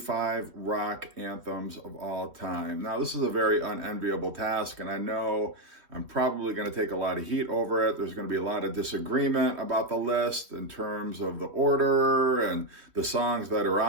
rock anthems of all time. Now, this is a very unenviable task, and I know I'm probably going to take a lot of heat over it. There's going to be a lot of disagreement about the list in terms of the order and the songs that are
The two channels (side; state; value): left; late; 3.0 ms